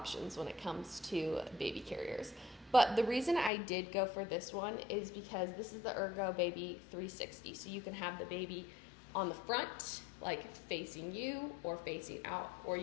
when it comes to baby carriers. But the reason I did go for this one is because this is the Ergo Baby 360. So you can have the baby on the front, like facing you or facing out, or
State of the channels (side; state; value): right; drops out; at 3.5 s